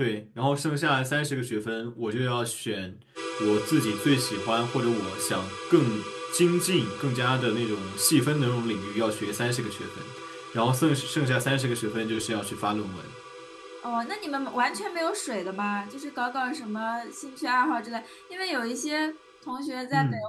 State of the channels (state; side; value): identical; both; correlation 1.00